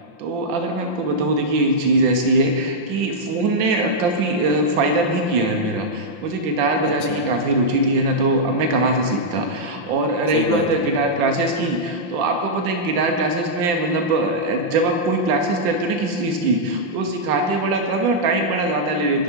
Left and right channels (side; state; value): left; late; 5.8 ms